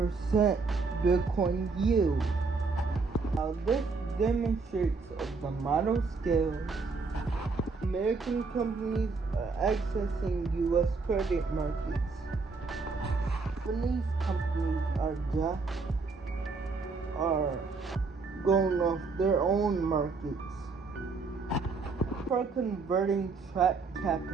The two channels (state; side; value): quieter; left; 4.3 dB